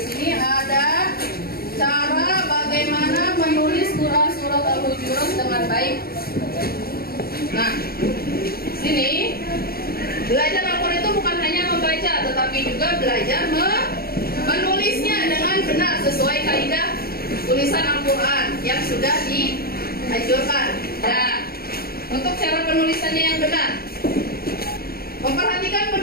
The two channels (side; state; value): right; late; 0.44 ms